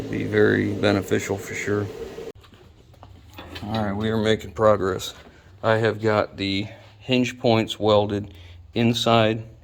very beneficial for sure. All right, we are making progress. I have got the hinge points welded inside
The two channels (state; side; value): identical; both; correlation 1.00